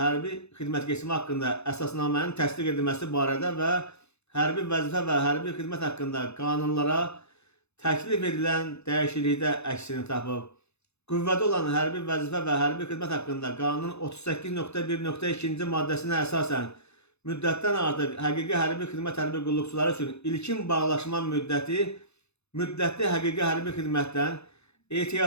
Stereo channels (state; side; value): late; right; 0.80 ms